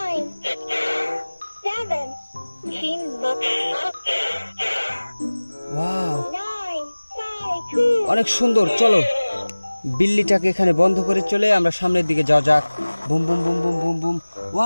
7. Chin look. ওয়াও, 9, 5, 2. অনেক সুন্দর। চলো বিল্লিটাকে এখানে বন্ধ করে চলে আমরা সামনের দিকে যাওয়া যাক। Boom boom boom boom boom broom.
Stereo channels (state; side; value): inverted; both; correlation -1.00